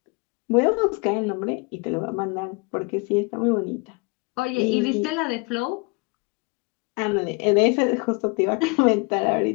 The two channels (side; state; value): right; quieter; 29.9 dB